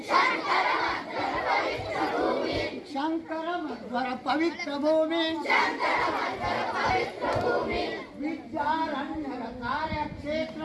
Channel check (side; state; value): both; identical; correlation 1.00